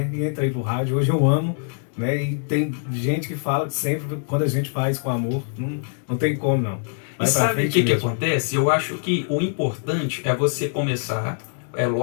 E entrei pro rádio, hoje eu amo, né? E tem gente que fala que sempre, quando a gente faz com amor, não tem como não. E sabe o que acontece? Eu acho que o importante é você começar. É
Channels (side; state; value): right; silent; 63 dB below the other